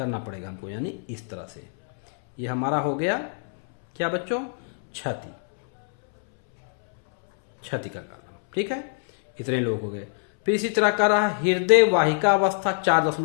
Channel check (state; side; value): silent; right; 62 dB below the other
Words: पड़ेगा हमको, यानी इस तरह से। ये हमारा हो गया क्या बच्चों, छति का कारण। ठीक है, इतने लोग हो गए। फिर इसी तरह का रहा हृदय वाहिका अवस्था